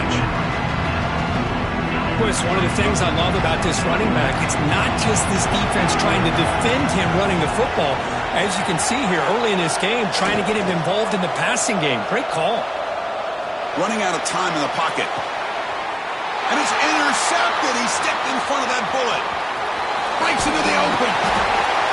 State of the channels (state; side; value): identical; both; correlation 1.00